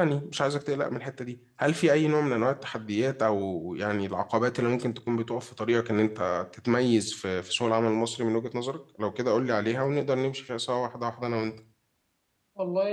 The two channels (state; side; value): identical; both; correlation 1.00